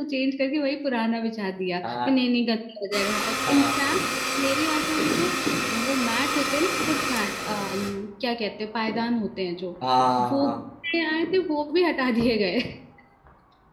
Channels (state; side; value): identical; both; correlation 1.00